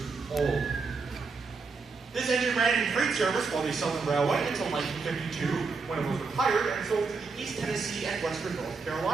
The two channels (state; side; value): quieter; left; 4.5 dB